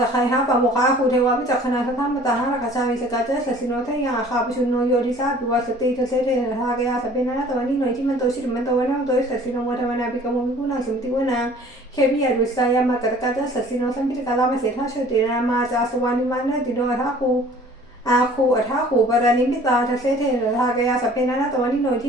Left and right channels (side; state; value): both; normal; correlation 0.51